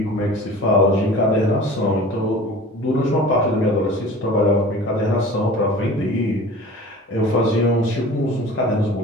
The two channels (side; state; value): both; normal; correlation 0.41